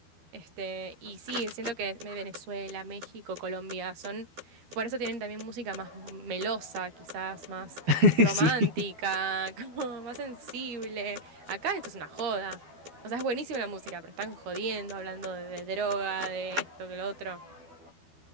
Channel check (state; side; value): late; left; 12 ms